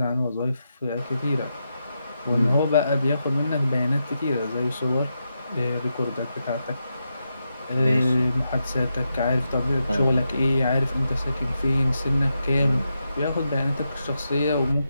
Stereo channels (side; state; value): both; inverted; correlation -0.86